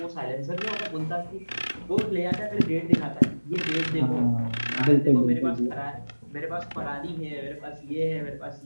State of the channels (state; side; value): inverted; both; correlation -1.00